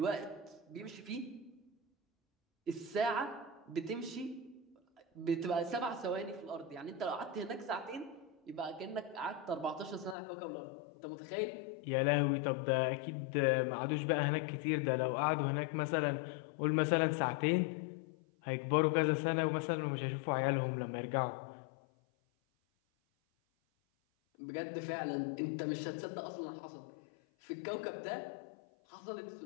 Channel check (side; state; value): right; drops out; at 10.2 s